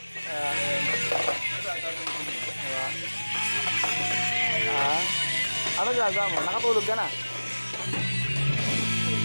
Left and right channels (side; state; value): both; inverted; correlation -1.00